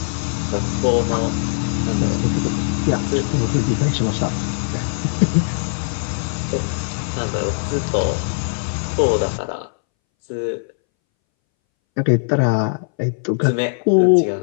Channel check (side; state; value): right; silent; 63 dB below the other